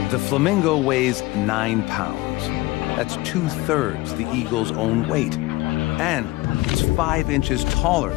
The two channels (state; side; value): quieter; right; 20.0 dB